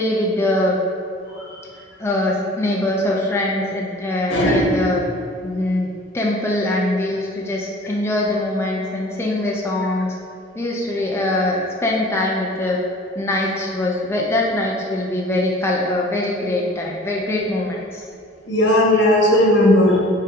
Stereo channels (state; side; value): normal; both; correlation 0.45